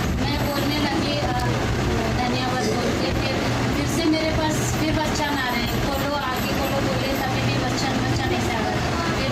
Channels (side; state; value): both; identical; correlation 1.00